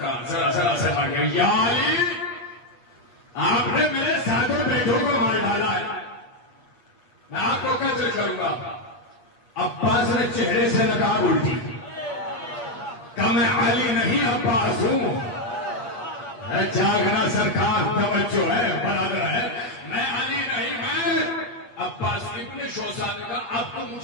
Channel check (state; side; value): late; right; 8.4 ms